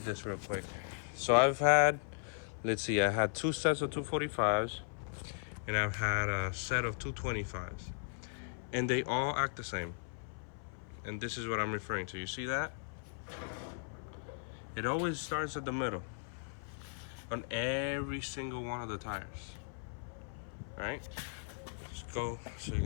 this real quick. So I've had, let's see, I had two sets of 245s and I've had a set of 225s, and they all act the same. And this is what I'm referring to. You see that? It always starts at the middle on every single one of the tires, right? Just go so you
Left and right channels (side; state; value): right; silent; 53 dB below the other